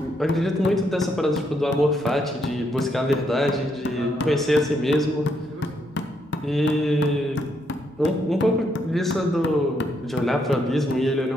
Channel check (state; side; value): normal; both; correlation 0.76